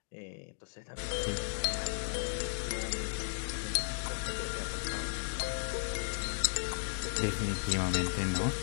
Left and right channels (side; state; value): right; silent; digital silence